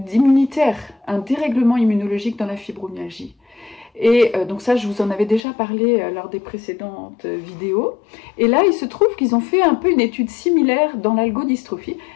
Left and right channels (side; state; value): right; drops out; at 5.4 s